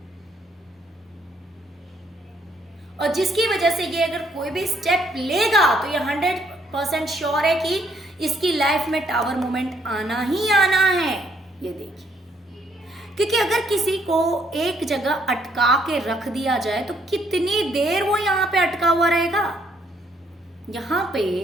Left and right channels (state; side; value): normal; both; correlation 0.69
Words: और जिसकी वजह से ये अगर कोई भी स्टेप लेगा तो ये 100% श्योर है कि इसकी लाइफ में टावर मोमेंट आना ही आना है। ये देखिए, क्योंकि अगर किसी को एक जगह अटका के रख दिया जाए तो कितनी देर वो यहाँ पे अटका हुआ रहेगा, यहाँ पे